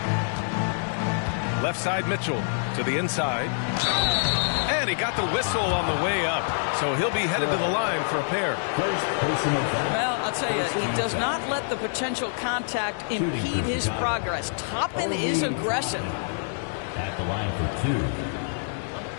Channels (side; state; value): right; silent; digital silence